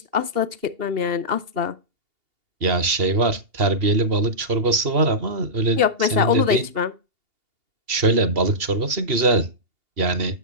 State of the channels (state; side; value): late; left; 2.8 ms